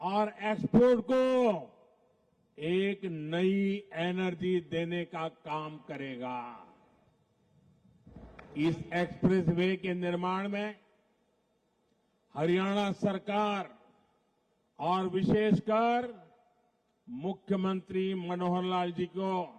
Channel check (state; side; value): identical; both; correlation 1.00